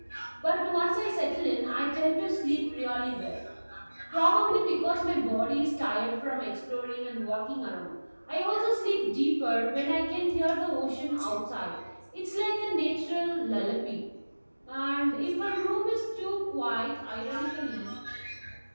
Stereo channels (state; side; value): inverted; both; correlation -1.00